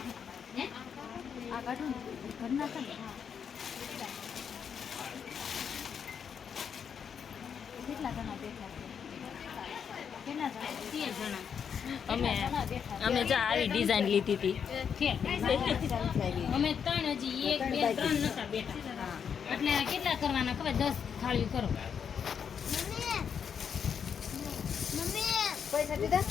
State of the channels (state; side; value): quieter; right; 7.3 dB